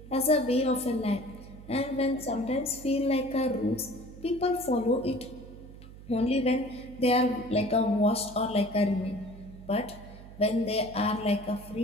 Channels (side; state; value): right; noise; hum, 17 dB below the sound